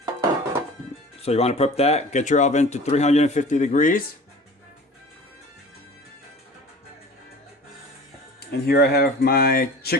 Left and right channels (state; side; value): normal; both; correlation 0.41